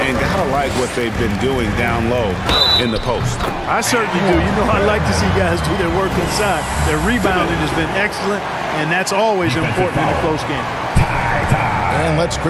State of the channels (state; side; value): identical; both; correlation 1.00